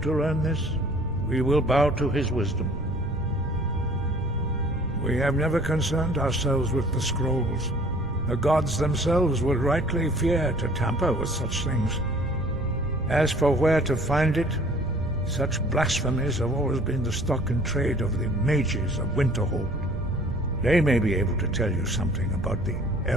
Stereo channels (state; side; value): noise; right; rumble, 9 dB below the sound